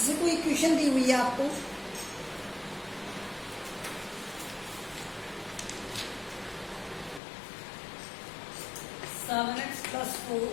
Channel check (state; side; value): drops out; right; at 7.2 s